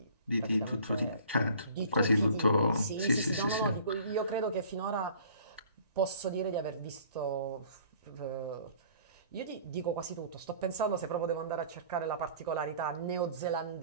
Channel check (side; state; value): both; inverted; correlation -0.51